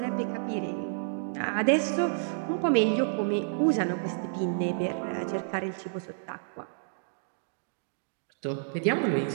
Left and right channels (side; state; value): left; silent; digital silence